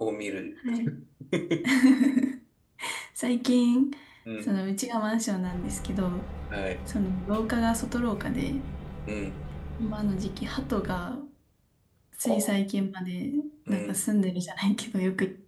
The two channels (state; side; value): identical; both; correlation 1.00